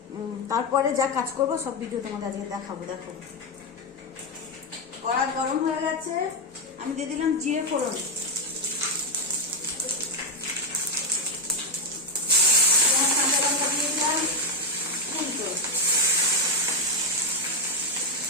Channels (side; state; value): both; normal; correlation 0.05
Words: তারপরে যা কাজ করবো সব ভিডিও তোমাদের আজকে দেখাবো। দেখো কড়া গরম হয়ে গেছে, আমি দিয়ে দিলাম জিরে ফোড়ন। দিয়ে দিলাম উল্টো।